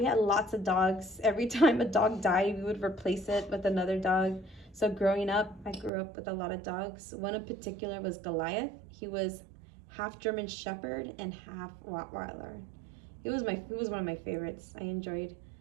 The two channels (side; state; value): left; drops out; at 5.9 s